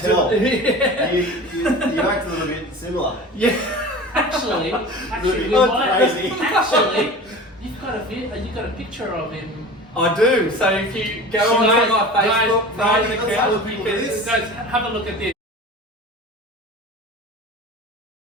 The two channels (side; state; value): both; normal; correlation 0.36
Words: tell. Yeah. You act a little bit similar. Yeah. Actually, you've got a picture of him. I do. So if you go on to my Facebook guys, account, you can Guys, have a look at this.